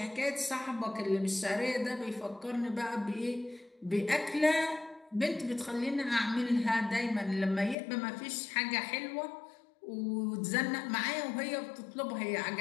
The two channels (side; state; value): right; drops out; at 7.8 s